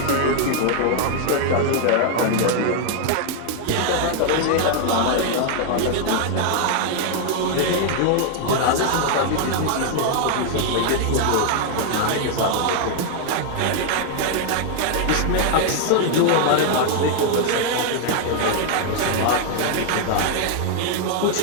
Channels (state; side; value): different; both; correlation 0.00